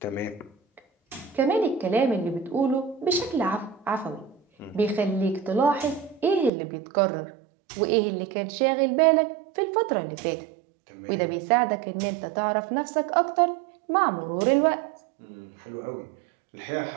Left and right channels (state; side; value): drops out; left; at 6.5 s